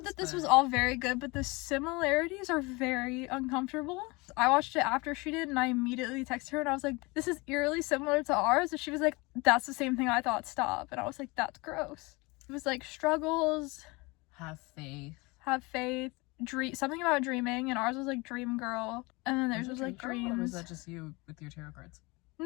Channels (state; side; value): quieter; right; 25.3 dB